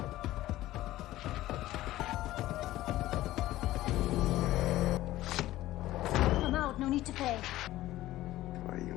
I'm out, no need to pay. Твою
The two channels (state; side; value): quieter; right; 15.6 dB